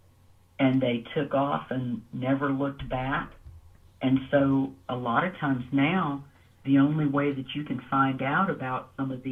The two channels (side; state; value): both; identical; correlation 1.00